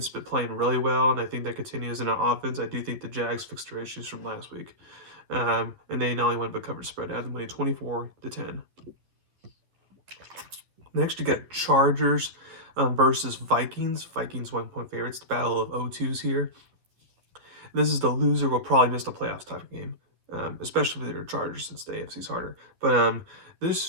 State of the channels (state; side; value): late; left; 11 ms